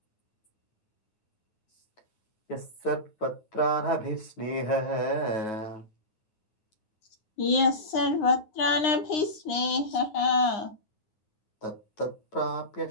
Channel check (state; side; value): late; right; 9.8 ms